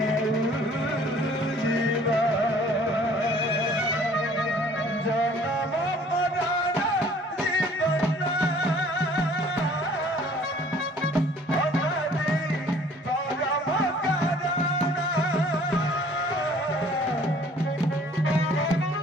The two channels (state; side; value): normal; both; correlation 0.54